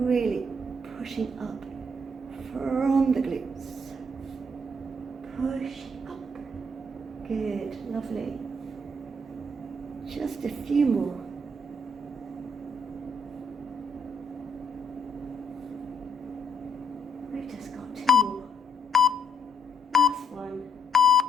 pushing up from the glutes. Push up. Good, lovely. Just a few more. We've just got 2 more. Last one.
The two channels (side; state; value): both; normal; correlation 0.72